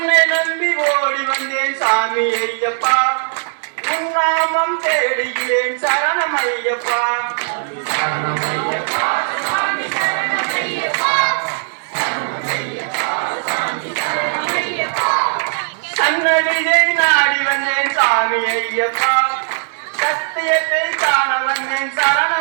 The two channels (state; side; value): silent; left; digital silence